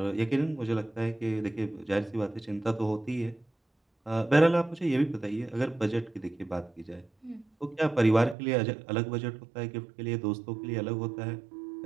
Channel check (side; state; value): left; drops out; at 8.3 s